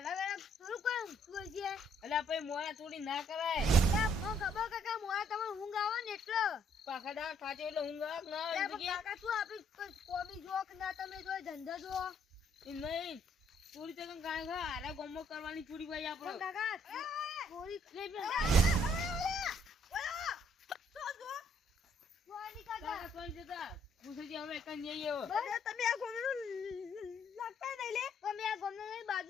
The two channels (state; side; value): normal; both; correlation 0.67